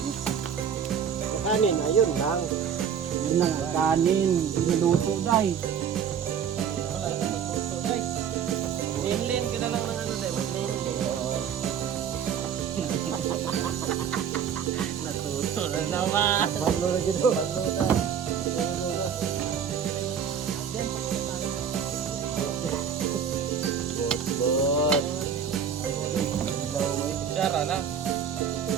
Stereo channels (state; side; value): quieter; left; 7.7 dB